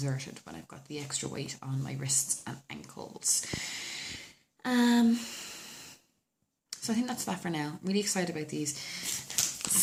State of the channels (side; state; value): both; identical; correlation 1.00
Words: when I've got the extra weight on my wrists and ankles. So I think that's that for now. I'm really excited about these